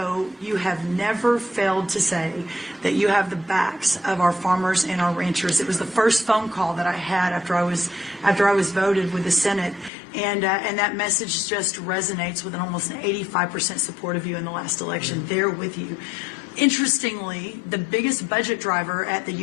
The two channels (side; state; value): right; drops out; at 9.9 s